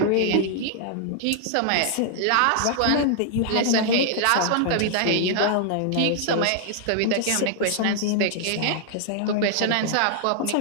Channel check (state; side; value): different; both; correlation -0.01